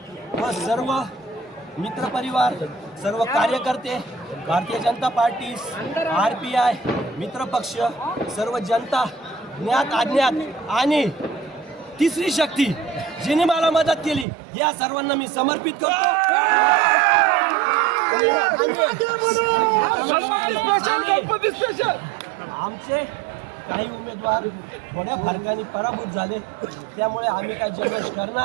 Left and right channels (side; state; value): left; drops out; at 14.2 s